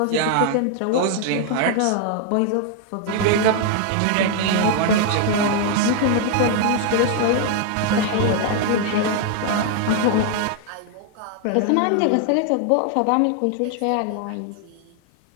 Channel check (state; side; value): different; both; correlation 0.00